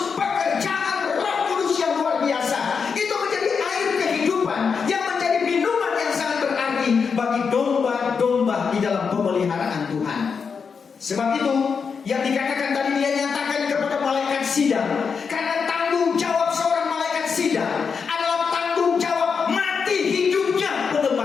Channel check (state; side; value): quieter; right; 5.8 dB